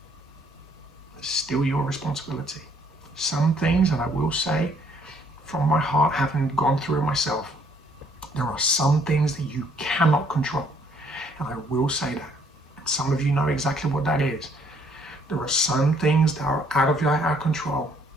It's still your responsibility. Some things, and I will say from my heart, having gone through it myself, there are some things that you cannot control. And I will say that. And some of you know exactly what that is. There are some things that are out of our control.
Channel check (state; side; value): normal; both; correlation 0.65